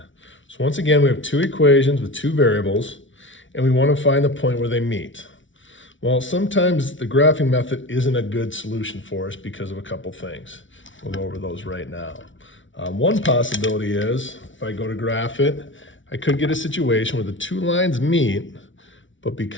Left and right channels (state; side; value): late; right; 0.56 ms